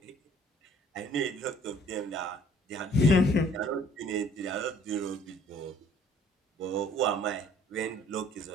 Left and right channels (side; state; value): both; normal; correlation 0.57